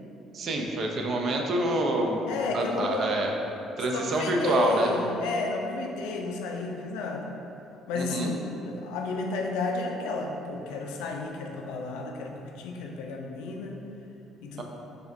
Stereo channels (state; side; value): normal; both; correlation 0.60